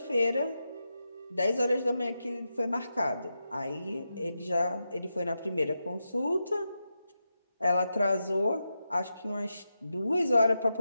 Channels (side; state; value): both; inverted; correlation -0.88